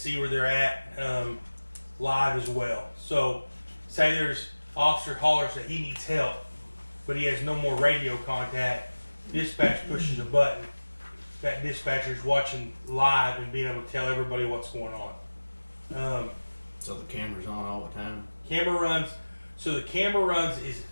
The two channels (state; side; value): inverted; both; correlation -1.00